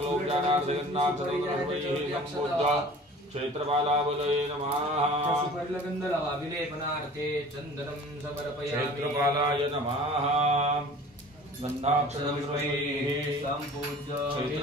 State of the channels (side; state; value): both; normal; correlation 0.44